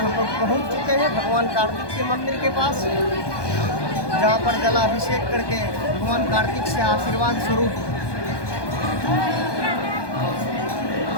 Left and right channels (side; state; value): right; late; 1.2 ms